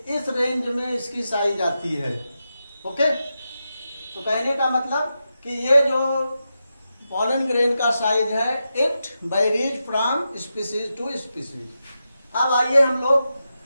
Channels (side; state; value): both; inverted; correlation -0.89